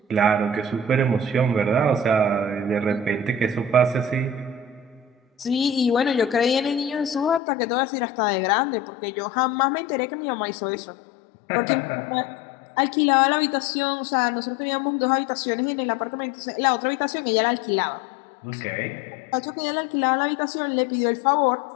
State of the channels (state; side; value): drops out; right; at 7.4 s